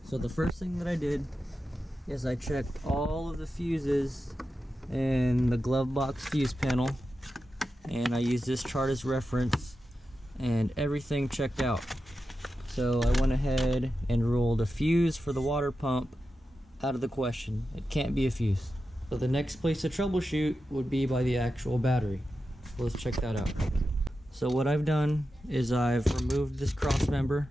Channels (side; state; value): both; normal; correlation 0.91